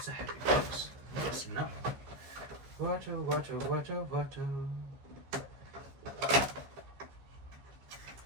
a heavy box. What's in that one? Water.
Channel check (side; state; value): left; late; 15 ms